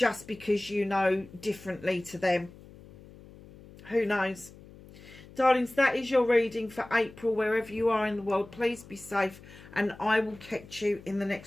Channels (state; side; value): noise; left; hum, 20 dB below the sound